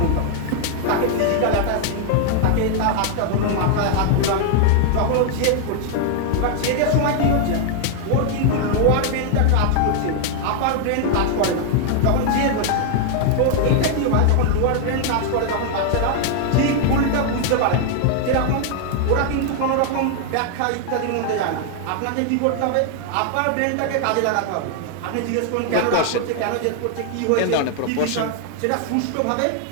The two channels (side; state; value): both; different; correlation 0.00